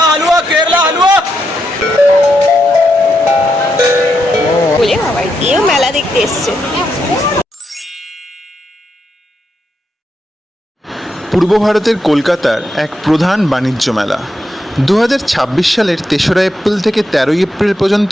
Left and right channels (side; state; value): both; normal; correlation 0.82